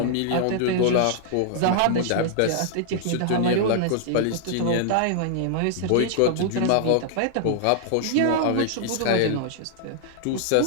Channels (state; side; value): different; both; correlation -0.01